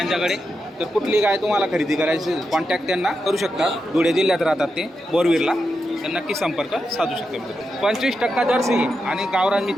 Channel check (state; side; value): normal; both; correlation 0.87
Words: तर कुठली गाय तुम्हाला खरेदी करायची कॉन्टॅक्ट त्यांना करू शकता. धुळे जिल्ह्यात राहतात ते, बोरवीरला. तर नक्की संपर्क साधू शकता. 25% जर्सी आहे आणि गावरान